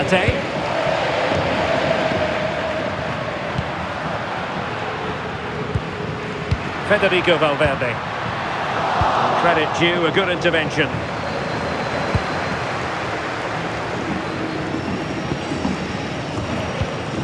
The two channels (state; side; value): identical; both; correlation 1.00